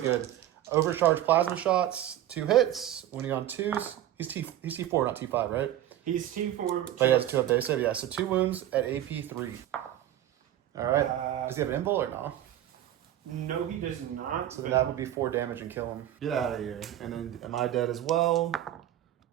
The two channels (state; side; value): quieter; left; 12.2 dB